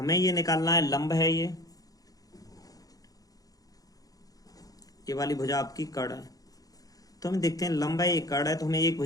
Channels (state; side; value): late; right; 0.18 ms